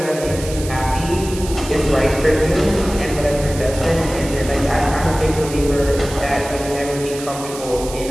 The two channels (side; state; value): right; noise; hiss, 12 dB below the sound